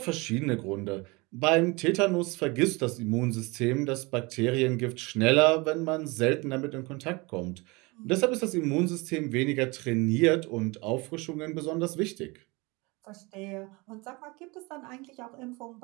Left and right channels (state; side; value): quieter; left; 25.7 dB